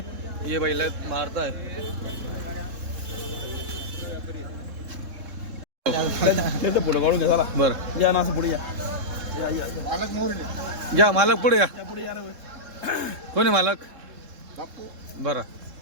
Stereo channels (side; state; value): left; late; 3.7 ms